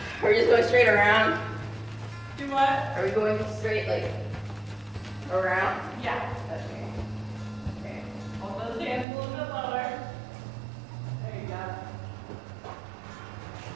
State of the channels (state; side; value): drops out; left; at 9.1 s